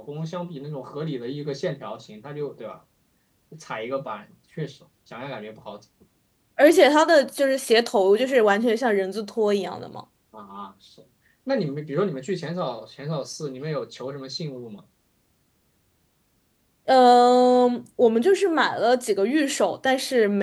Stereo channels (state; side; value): identical; both; correlation 1.00